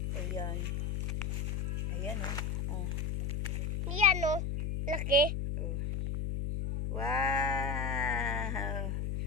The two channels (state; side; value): noise; left; hum, 1 dB below the sound